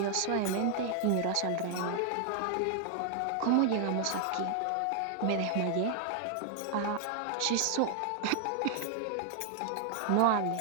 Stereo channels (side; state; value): both; different; correlation 0.00